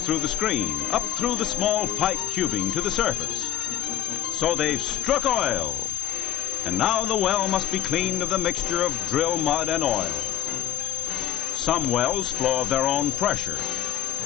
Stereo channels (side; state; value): right; quieter; 11.6 dB